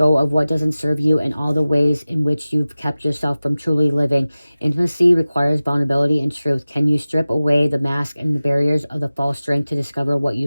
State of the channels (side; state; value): both; inverted; correlation -0.97